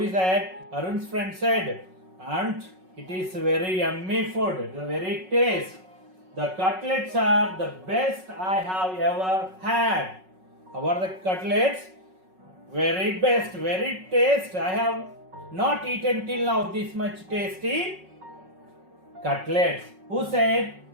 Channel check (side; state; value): left; late; 5.4 ms